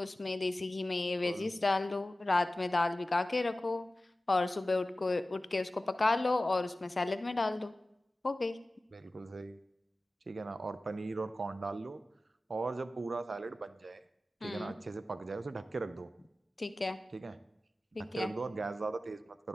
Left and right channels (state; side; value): normal; both; correlation 0.96